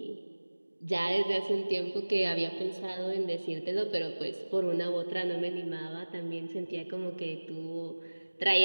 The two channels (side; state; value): both; inverted; correlation -1.00